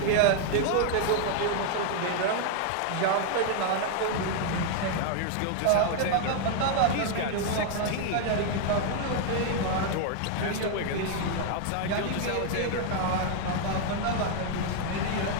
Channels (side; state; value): both; different; correlation 0.00